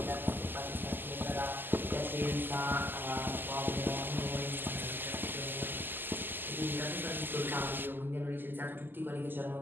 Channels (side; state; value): left; late; 0.093 ms